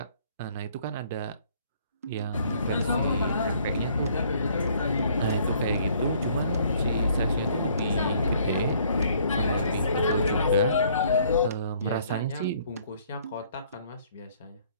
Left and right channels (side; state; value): both; inverted; correlation -0.62